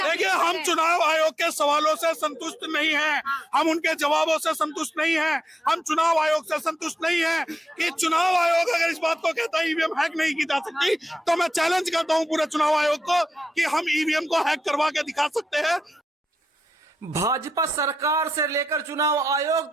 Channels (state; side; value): normal; both; correlation 0.88